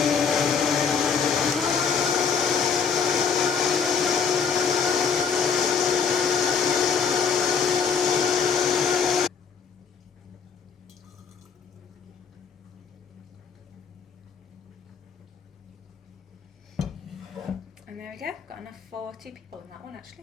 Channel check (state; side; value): quieter; right; 6.4 dB